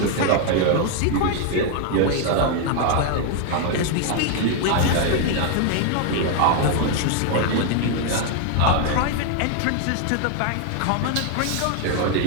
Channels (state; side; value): different; both; correlation 0.00